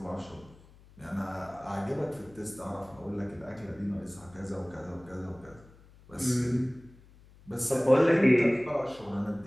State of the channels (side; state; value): left; noise; hum, 24 dB below the sound